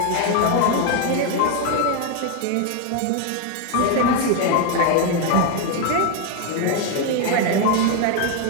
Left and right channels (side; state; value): both; different; correlation 0.01